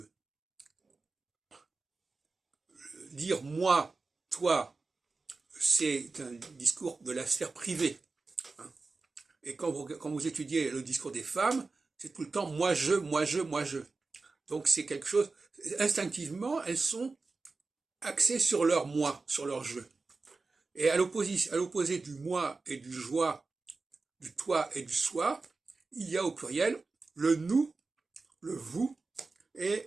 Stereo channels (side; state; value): left; quieter; 3.9 dB